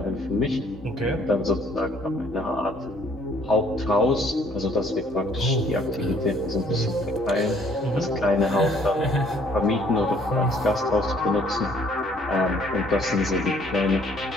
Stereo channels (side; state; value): both; normal; correlation 0.61